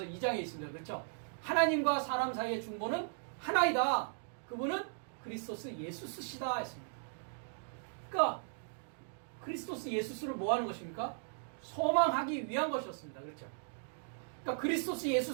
2장에 있습니다. 그렇죠? 하나님과 사람 사이의 중보는 하나이다. 그분은 그리스도스 예수스시다 했습니다. 그러니까 그리스도스 예수스를 뭐 하는 것입니까? 소망하기 위한 것이었습니다. 그렇죠? 그러니까 그리스도스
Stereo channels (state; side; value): silent; left; digital silence